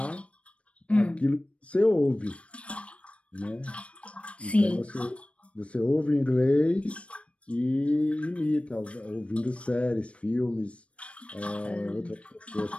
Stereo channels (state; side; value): late; right; 0.062 ms